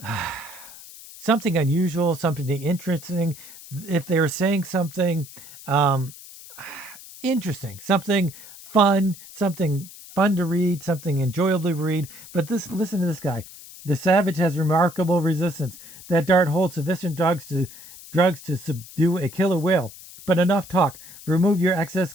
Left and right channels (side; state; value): left; noise; hiss, 17 dB below the sound